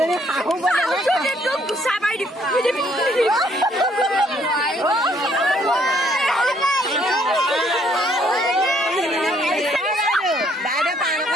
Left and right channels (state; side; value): normal; both; correlation 0.66